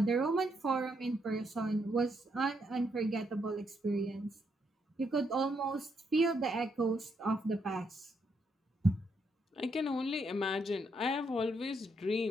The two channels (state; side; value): normal; both; correlation 0.76